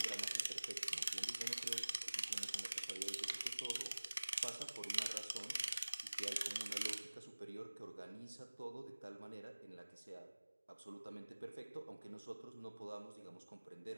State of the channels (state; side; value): inverted; both; correlation -1.00